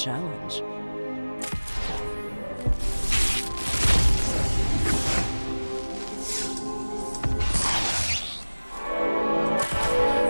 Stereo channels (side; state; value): both; inverted; correlation -1.00